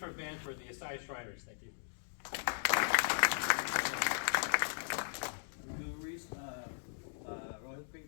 of Band for the Asai Shriners. Thank you. Bill Reese, Royal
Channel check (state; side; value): silent; right; digital silence